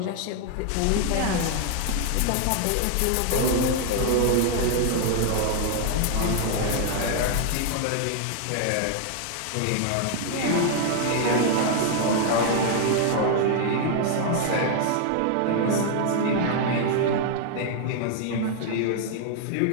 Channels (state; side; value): different; both; correlation 0.00